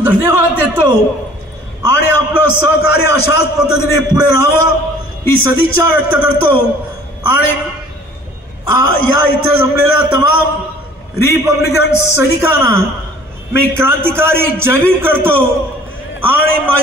धन्यवाद देतो आणि आपलं सहकार्य अशाच पद्धतीने पुढे राहावं ही सदिच्छा व्यक्त करतो। आणि या इथे जमलेल्या तमाम रिपब्लिकन सैनिकांना मी क्रांतिकारी जय भीम करतो आणि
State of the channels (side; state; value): both; normal; correlation 0.52